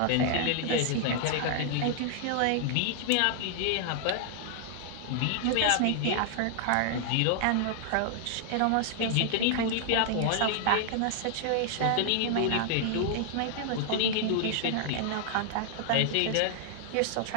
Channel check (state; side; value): different; both; correlation -0.01